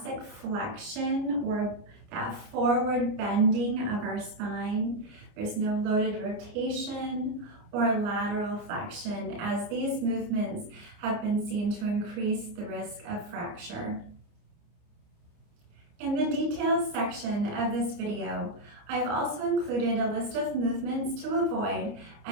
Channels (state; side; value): late; left; 29 ms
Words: flexion or that forward bending of our spine. There's no loaded rotation or lateral flexion, as these movements have been seen to increase the risk of fracture. In the details section of this video, I've also included a list of movements to avoid